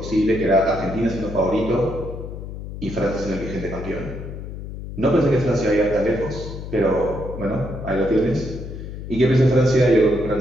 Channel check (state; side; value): noise; left; hum, 9 dB below the sound